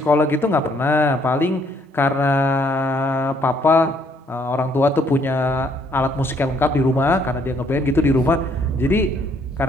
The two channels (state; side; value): normal; both; correlation 0.67